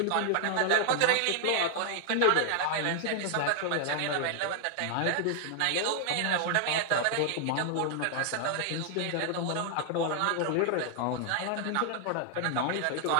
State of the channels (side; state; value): both; different; correlation 0.00